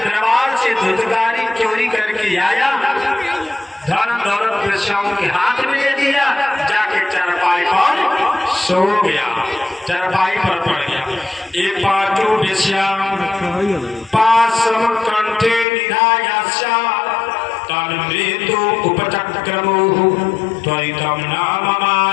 से धुंधकारी चोरी करके आया, धन दौलत वेश्याओं के हाथ में दे दिया, जाके चारपाई पर सो गया, चारपाई पर पड़ गया। ये 5 वेश्या 5 समक्र उपचक्रमो त्वरितं नाम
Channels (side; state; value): right; drops out; at 15.7 s